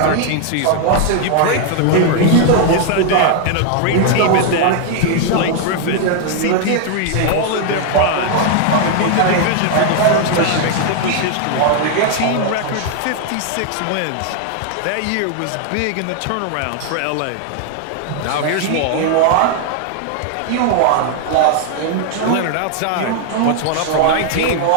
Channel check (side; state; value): both; different; correlation 0.00